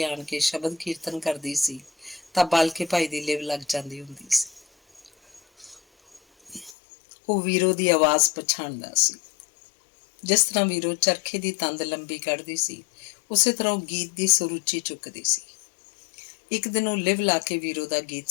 ਆਣ ਕੇ ਸ਼ਬਦ ਕੀਰਤਨ ਕਰਦੀ ਸੀ ਤਾਂ ਬਾਲਕੇ ਭਾਈ ਦੀ ਲਿਵ ਲੱਗ ਜਾਂਦੀ ਹੁੰਦੀ ਸੀ। ਉਹ ਵੀਰੋ ਦੀ ਆਵਾਜ਼ ਪਛਾਣਦਾ ਸੀ। ਜਿਸ ਤਰ੍ਹਾਂ ਵੀਰੋ ਚਰਖੇ ਦੀ ਤੰਦ ਲੰਬੀ ਕੱਢਦੀ ਸੀ, ਉਸੇ ਤਰ੍ਹਾਂ ਉਹ ਗੀਤ ਦੀ ਸੁਰ ਉੱਚੀ ਚੁੱਕਦੀ ਸੀ। ਇੱਕ ਦਿਨ ਉਹ ਲਿਵ ਲਾ ਕੇ ਵੀਰੋ ਦਾ ਗੀਤ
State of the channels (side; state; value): right; drops out; at 6.8 s